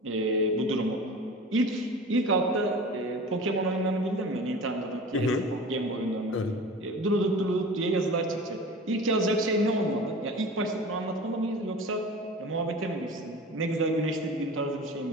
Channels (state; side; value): normal; both; correlation 0.37